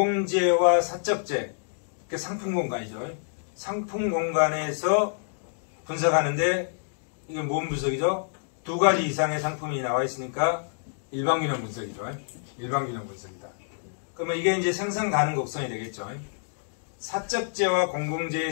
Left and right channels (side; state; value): right; silent; digital silence